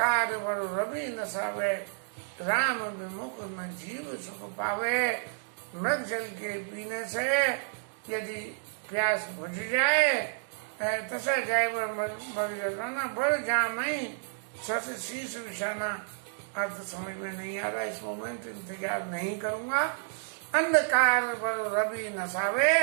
बल रवि न सावे, राम विमुख न जीव सुख पावे। मृग जल के पीने से यदि प्यास बुझ जाए, तसा जाए बल जल पाना, बल जामई शशि शीर्ष विषाना। अर्थ समझ में नहीं आ रहा इस मोमेंट, इंतजार नहीं करूंगा। अंधकार बल रवि नसावे,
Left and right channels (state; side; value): silent; left; digital silence